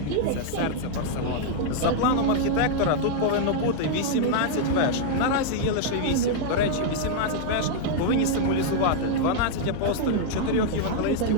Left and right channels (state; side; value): different; both; correlation -0.01